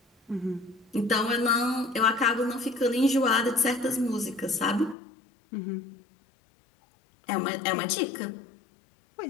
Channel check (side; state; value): right; drops out; at 5.0 s